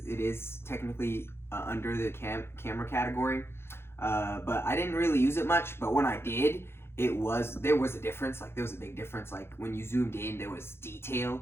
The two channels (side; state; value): right; late; 0.12 ms